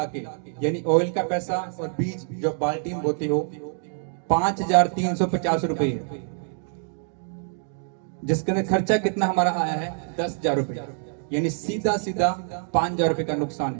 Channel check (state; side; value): silent; left; 61 dB below the other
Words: के, यानी ऑयल का पैसा और बीज जो बाल्टी में बोते हो, 5,350 रुपए है, जिसके अंदर खर्चा कितना हमारा आया है? 10,000 रुपए, यानी सीधा 5,000 रुपए का नुकसान